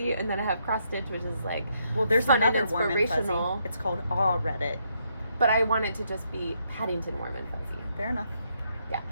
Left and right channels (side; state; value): both; inverted; correlation -0.76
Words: and then I have cross stitch, which is like Well, there's fun and another warm and inspirational. fuzzy. It's called Aw Reddit. But I want it to just be Paddington warm and fuzzy. Fair enough. Yeah.